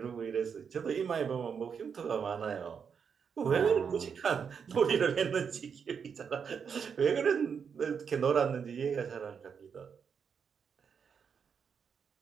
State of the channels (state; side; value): quieter; left; 6.7 dB